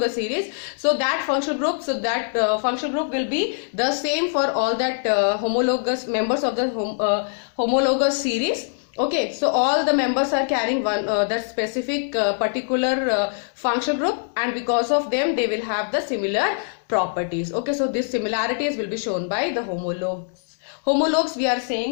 series, so that functional group, so that functional group will be the same for all that homologous members of the homologous series. Okay, so all the members are carrying one that specific particular functional group, and because of them they will have the similar properties. Okay, so these similarities will be shown by the homologues. Homologues, we are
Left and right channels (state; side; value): silent; right; digital silence